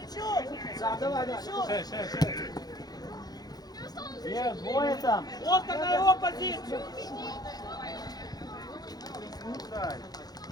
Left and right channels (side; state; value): right; late; 0.19 ms